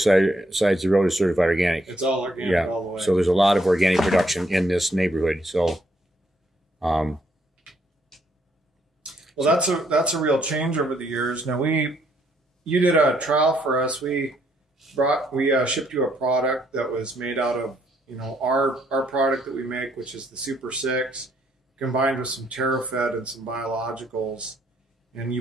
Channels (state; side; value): normal; both; correlation 0.71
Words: of the road is certified organic. It's all organic all the way. So there's a lot of organic production in this neighborhood. So, well, that's a real change over the years. Now you did a trial for us. We shipped you a product that was made out of our product that we make, which is the SuperSix, combined with some TerraFed and some biologicals. And